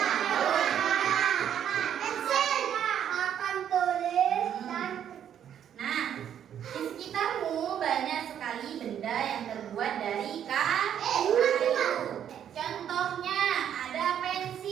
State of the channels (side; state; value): left; quieter; 9.5 dB